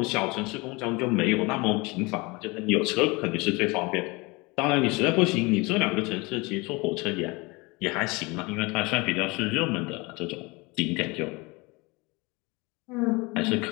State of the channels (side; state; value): right; quieter; 25.5 dB